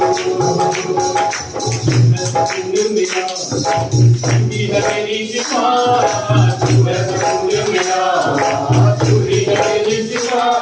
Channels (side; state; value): both; identical; correlation 1.00